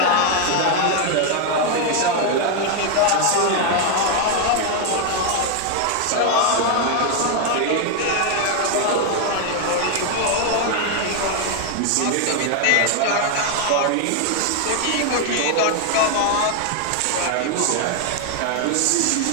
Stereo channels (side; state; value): both; different; correlation 0.01